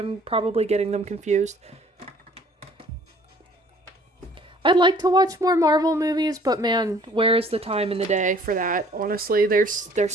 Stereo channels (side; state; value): both; normal; correlation 0.55